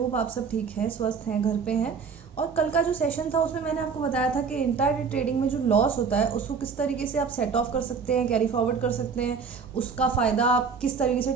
आप सब ठीक हैं, स्वस्थ हैं, घर पे हैं। और कल का जो सेशन था उसमें मैंने आपको बताया था कि इंट्राडे ट्रेडिंग में जो लॉस होता है उसको किस तरीके से आप सेट ऑफ कर सकते हैं, कैरी फॉरवर्ड कर सकते हैं, उसका फ़ायदा आप किस तरीके से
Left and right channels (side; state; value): left; quieter; 5.7 dB